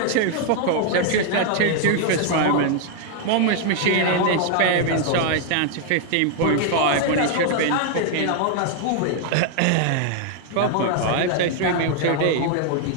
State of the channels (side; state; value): both; different; correlation 0.00